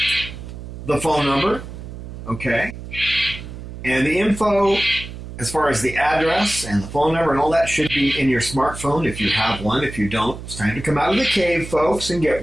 the phone number, okay? And the info, as far as the address and the phone number and all that, should be in your smartphone if you have one. If you don't, it's time to come out of the cave, folks, and get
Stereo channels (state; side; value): noise; right; hum, 11 dB below the sound